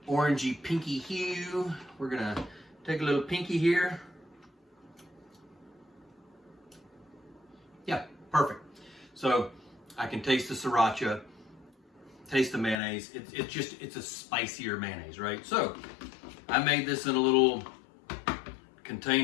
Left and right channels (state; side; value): drops out; right; at 12.8 s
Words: orangey pinky hue. We're gonna take a little pinky here. Yeah, perfect. So I can taste the Sriracha, taste the mayonnaise. It's a spicier mayonnaise, right? So I made this in a little